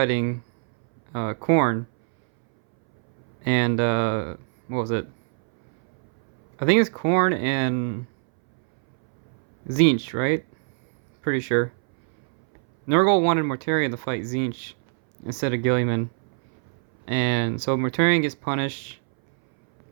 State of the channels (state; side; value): silent; left; 63 dB below the other